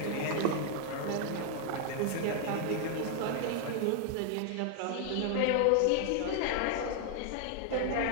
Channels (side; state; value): both; different; correlation 0.00